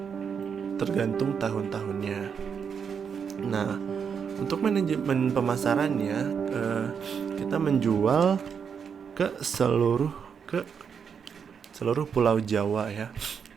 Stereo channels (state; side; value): quieter; left; 6.8 dB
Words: tergantung tahun-tahunnya. Nah, untuk manajemen pemasarannya, kita menjual ke seluruh pulau Jawa ya,